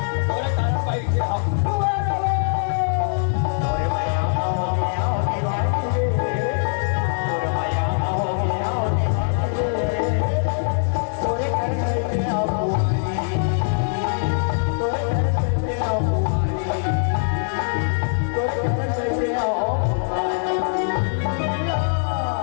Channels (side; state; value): right; silent; digital silence